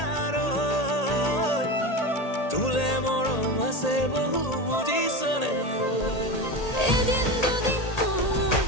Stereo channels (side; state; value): right; late; 1.8 ms